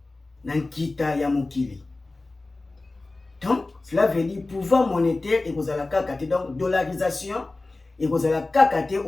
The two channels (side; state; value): right; quieter; 3.2 dB